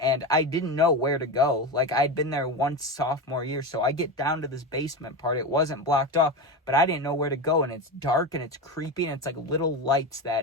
and I didn't know where to go. Like, I'd been there once sophomore year, so I get down to this basement part. It wasn't blocked off, but I didn't know where to go, and it's dark, and it's creepy, and it's like little lights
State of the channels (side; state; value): both; normal; correlation 0.20